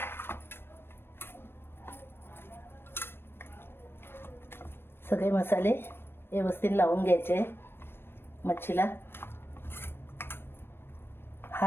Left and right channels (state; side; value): late; right; 0.11 ms